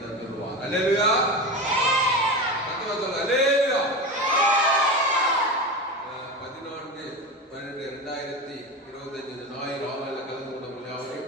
தந்துள்ளார். அல்லேலூயா. அல்லேலூயா. 14/12/2025 ஞாயிறு ஆலையில் கலந்து கொண்ட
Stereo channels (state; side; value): normal; both; correlation 0.24